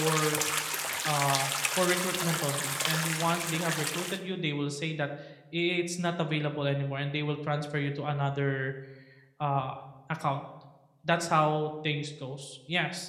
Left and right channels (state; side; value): identical; both; correlation 1.00